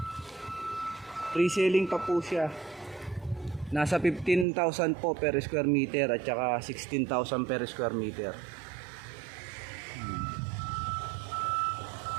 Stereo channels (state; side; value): drops out; left; at 4.5 s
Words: Pre-selling pa po siya. Nasa 15,000 po per square meter at saka 16,000 per square meter.